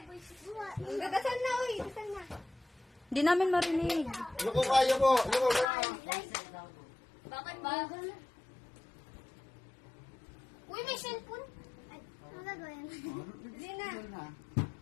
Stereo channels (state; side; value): drops out; right; at 5.7 s